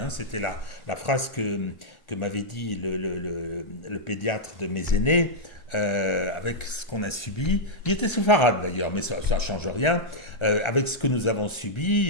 C'était la phrase que m'avait dit le pédiatre de mes aînés, avec ce qu'on a subi. Il était séfarade d'ailleurs, mais ça ne change rien. Avec ce que nous avons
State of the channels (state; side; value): late; right; 1.3 ms